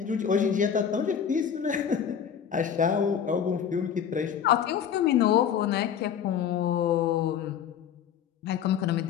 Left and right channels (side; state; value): right; quieter; 8.3 dB